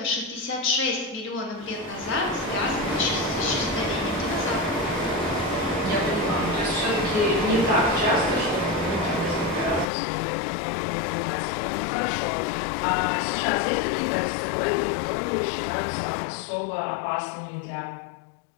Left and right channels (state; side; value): drops out; right; at 9.9 s